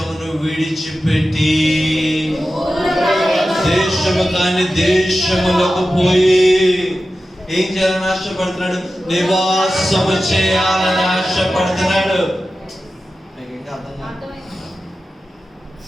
విడిచిపెట్టి దేశము కాని దేశములకు పోయి ఏం చేయాలని ఆశపడుతున్నాడు? నివాసము చేయాలని ఆశపడుతున్నాడు. మీకు ఇంకా అర్థం కాదు?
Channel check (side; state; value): both; normal; correlation 0.93